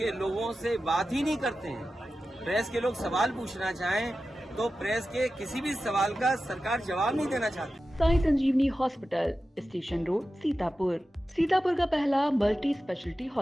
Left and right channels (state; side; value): normal; both; correlation 0.93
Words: लोगों से बात ही नहीं करते हैं। प्रेस के लोग सवाल पूछना चाहें तो प्रेस के किसी भी सवाल का सरकार जवाब नहीं देना चाहती। साई संजीवनी हॉस्पिटल, स्टेशन रोड, सीतापुर का पहला मल्टी स्पेशलिटी